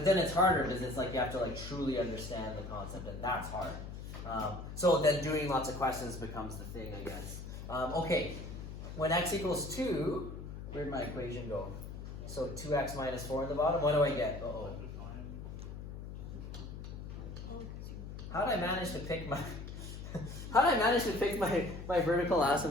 then it's harder because it's like you have to like truly understand the concept, and that's hard. So then doing lots of questions becomes the thing, I guess. Okay, when x equals 2, where'd my equation go? So 2x minus 4 in the bottom. What do I get? Uh-oh. How did I manage to pick my... How did I manage to pick my vertical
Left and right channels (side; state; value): left; noise; hum, 9 dB below the sound